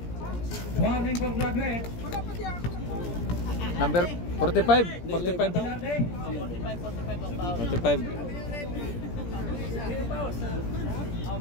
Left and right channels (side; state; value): right; late; 17 ms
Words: Warning for graduate. Number 45. 45 daw. Bilarte. 45 ang foul. 45.